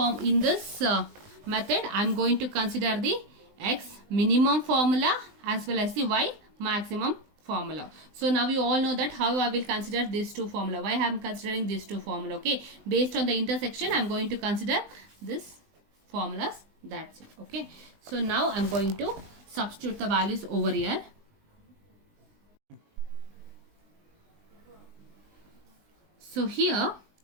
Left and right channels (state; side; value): late; left; 20 ms